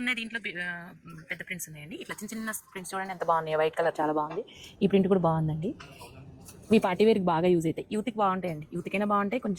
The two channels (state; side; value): identical; both; correlation 1.00